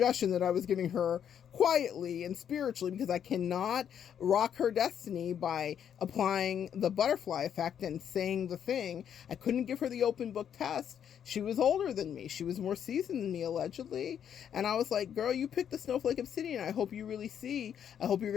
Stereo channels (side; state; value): right; quieter; 8.8 dB